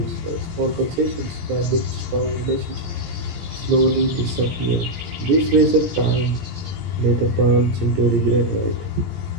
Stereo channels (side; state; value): left; late; 17 ms